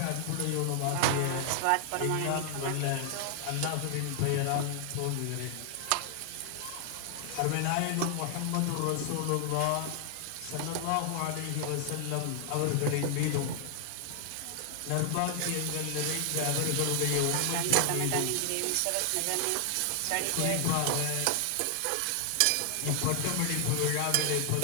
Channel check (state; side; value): different; both; correlation 0.00